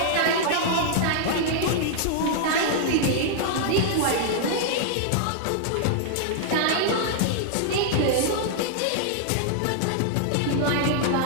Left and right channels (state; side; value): different; both; correlation -0.01